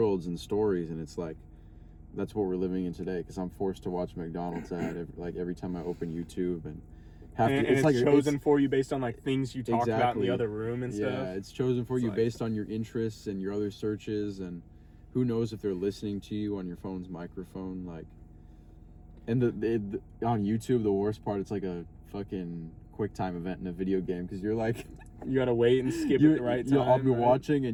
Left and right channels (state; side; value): identical; both; correlation 1.00